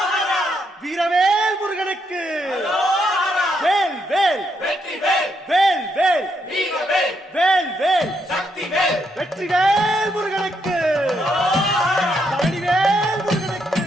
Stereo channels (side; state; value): both; normal; correlation 0.77